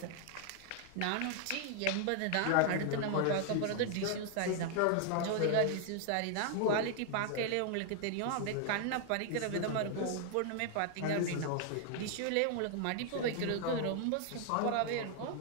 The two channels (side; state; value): both; different; correlation 0.00